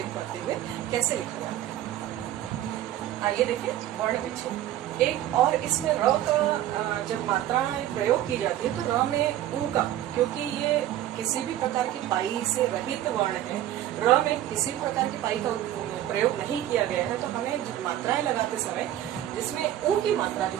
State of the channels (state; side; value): quieter; left; 12.7 dB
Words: करते हुए कैसे लिखा जाता है। आइए देखें वर्ण विच्छेद। एक और इसमें र का जब मात्राएं प्रयोग की जाती है तो र में ऊ का, क्योंकि ये किसी भी प्रकार की पाई से रहित वर्ण है, र में किसी प्रकार की पाई का प्रयोग नहीं किया गया है, तो हमें मात्राएं लगाते समय जिसमें ऊ की मात्रा जो